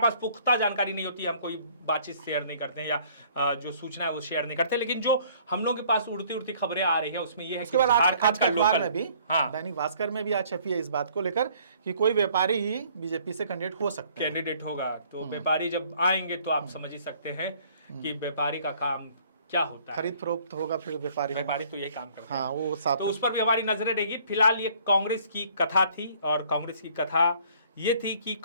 पुख्ता जानकारी नहीं होती हम कोई बातचीत शेयर नहीं करते हैं या जो सूचना है वो शेयर नहीं करते। लेकिन जो हम लोग के पास उड़ती उड़ती खबरें आ रही है उसमें ये है कि आज का अखबार में भी, दैनिक भास्कर में भी आज छपी है इस बात को लेकर कि कोई व्यापारी ही बीजेपी से कैंडिडेट होगा। तो व्यापारी जब आएंगे तो आप समझ ही सकते हैं कि व्यापारी का काम क्या होता है, खरीद फरोख्त होगा, फिर व्यापारी तो ये काम करते हैं। वो तो उस पर भी हमारी नजरें रहेगी। फिलहाल ये कांग्रेस की कथा थी, और कांग्रेस की कथा ये थी कि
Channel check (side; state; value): both; inverted; correlation -0.58